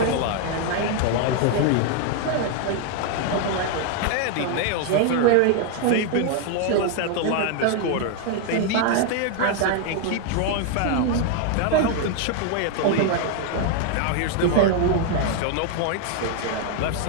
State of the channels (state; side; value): different; both; correlation 0.00